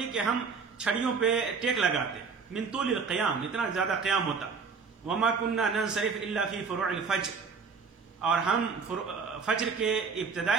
کہ ہم چھڑیوں پہ ٹیک لگاتے. من طول القیام، اتنا زیادہ قیام ہوتا. وما کننا ننصرف الا فی فروع الفجر، اور ہم فجر کے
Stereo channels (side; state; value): left; quieter; 5.2 dB